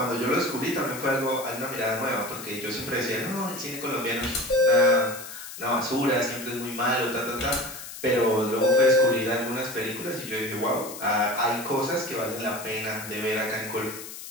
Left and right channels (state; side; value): noise; left; hiss, 12 dB below the sound